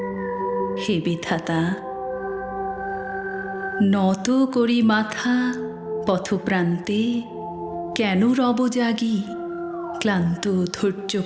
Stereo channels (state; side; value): identical; both; correlation 1.00